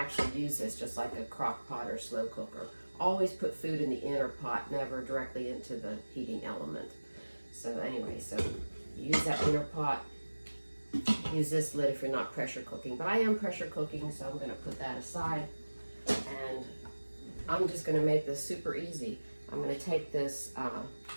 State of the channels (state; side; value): inverted; both; correlation -1.00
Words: use this just like a crock pot or slow cooker. Always put food in the inner pot, never directly into the heating element. So anyway, so use that inner pot. Use this lid if you're not pressure cooking, but I am pressure cooking, so I'm going to put that aside, and I'm just going to make this super easy. I'm going to take this